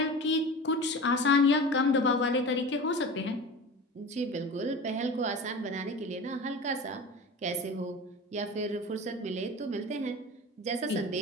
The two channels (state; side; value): normal; both; correlation 0.33